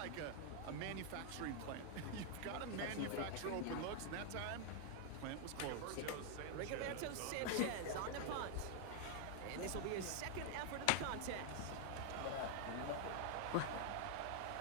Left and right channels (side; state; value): both; different; correlation 0.00